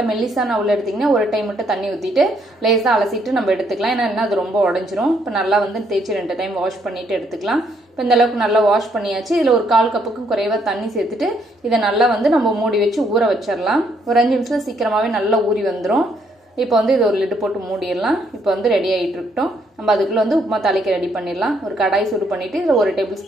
மெல்லிசான அவல் எடுத்தீங்கன்னா ஒரு டைம் மட்டும் தண்ணி ஊத்திட்டு லேசா அலசிட்டு நம்ம எடுத்துக்கலாம். ஏன்னா அது ரொம்ப உடைஞ்சிரும். இப்போ நல்லா வந்து தேய்ச்சி 2 டைம் வாஷ் பண்ணிட்டு எடுத்துக்கலாம். இப்போ இந்த அளவுக்கு நல்லா வாஷ் பண்ணியாச்சு. இதுல ஒரு 1/4 கப்புக்கு குறைவா தண்ணி சேர்த்துட்டு இதை நல்லா வந்து நம்ம மூடி வச்சு ஊற வச்சிடலாம். ஒரு 5 நிமிஷத்துல சீக்கிரமாவே நல்லா ஊறி வந்துரும். இப்போ வந்து இது ஒரு லிட் போட்டு மூடிடலாம். இப்போ வந்து ரெடி ஆயிட்டு இருக்கட்டும். நம்ம அதுக்குள்ள வந்து உப்புமா தாளிக்க ரெடி பண்ணிடலாம். ஒரு கடாய் சூடு பண்ணிட்டு இதுல 1 டேபிள்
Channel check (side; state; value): both; normal; correlation 0.71